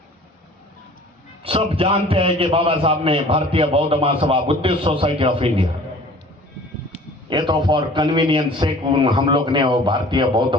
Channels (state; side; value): normal; both; correlation 0.48